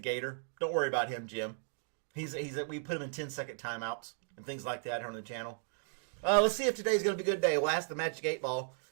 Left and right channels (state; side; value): silent; left; digital silence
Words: Don't worry about him, Jim. We put him in 10-second timeouts and things like that here on the channel. Let's see if today's going to be a good day. We'll ask the Magic 8 Ball.